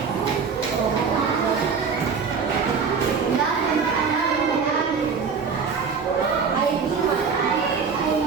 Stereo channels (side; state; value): left; quieter; 5.6 dB